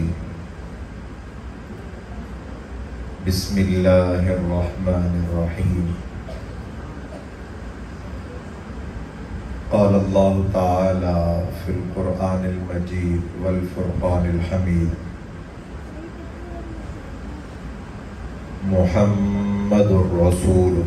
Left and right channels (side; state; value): both; identical; correlation 1.00